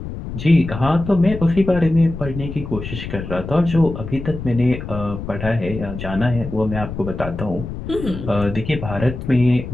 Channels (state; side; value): noise; left; rumble, 8 dB below the sound